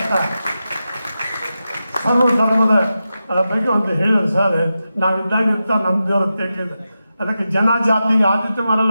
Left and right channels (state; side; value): inverted; both; correlation -0.91